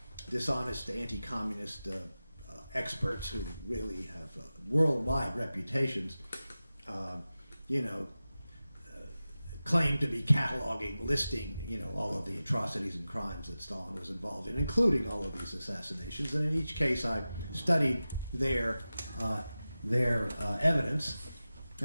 dishonest anti-communist experts who really have worldwide reputations, claim to be cataloging, listing, all of the atrocities and crimes that Stalin was involved in, including all of these assassinations. And in each case, I studied their evidence,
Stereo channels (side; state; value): both; inverted; correlation -0.95